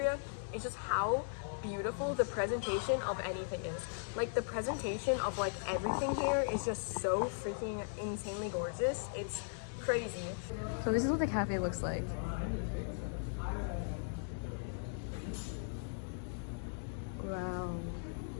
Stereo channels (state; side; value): silent; right; digital silence